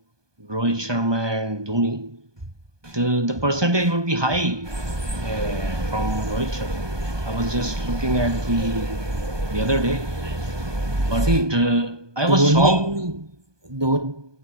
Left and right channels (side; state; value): left; late; 1.2 ms